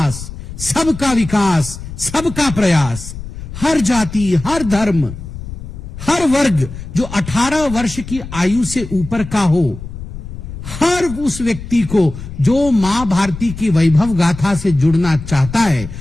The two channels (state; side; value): noise; left; rumble, 11 dB below the sound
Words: सबका विकास, सबका प्रयास, हर जाति, हर धर्म, हर वर्ग जो 18 वर्ष की आयु से ऊपर का हो, हर उस व्यक्ति को जो मां भारती की वैभव गाथा से जुड़ना चाहता है,